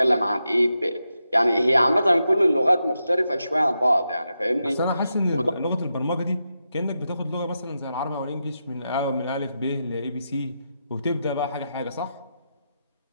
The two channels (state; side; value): inverted; both; correlation -0.87